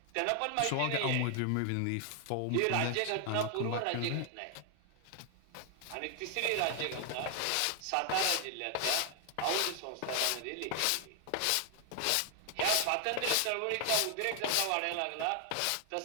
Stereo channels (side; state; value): both; different; correlation 0.00